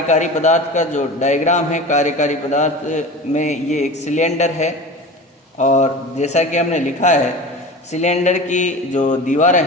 पदार्थ का जो डायग्राम है। कार्यकारी पदार्थ में ये एक सिलेंडर है और जैसा कि हमने लिखा है सिलेंडर की जो दीवारें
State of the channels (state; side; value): normal; both; correlation 0.33